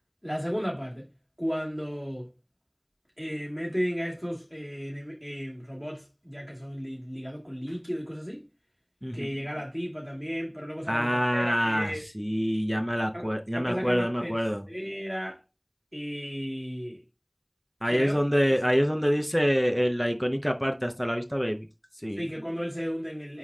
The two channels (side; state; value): both; identical; correlation 1.00